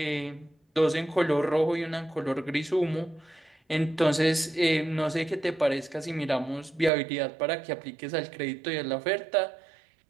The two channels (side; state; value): left; drops out; at 6.9 s